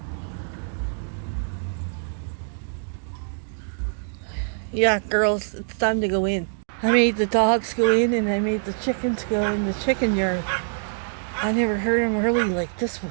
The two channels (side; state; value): left; silent; digital silence